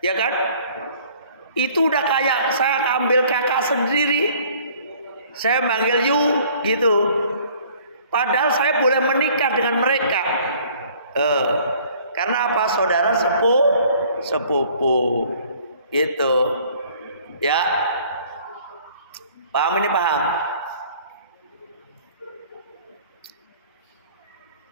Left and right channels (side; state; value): both; inverted; correlation -0.55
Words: kan? Itu udah kayak saya ambil kakak sendiri. Saya manggil Yu gitu. Padahal saya boleh menikah dengan mereka. Karena apa? Saudara sepupu. Gitu. Ya. Paham ini, paham?